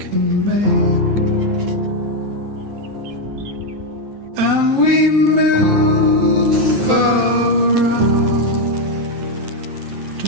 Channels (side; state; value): left; late; 9.2 ms